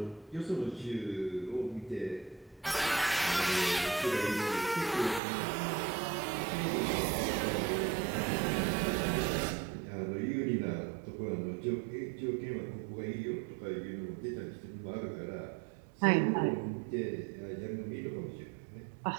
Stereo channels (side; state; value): left; drops out; at 5.2 s